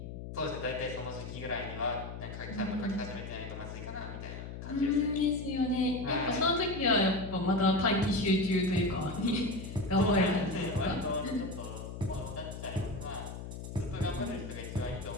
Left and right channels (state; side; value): noise; left; hum, 9 dB below the sound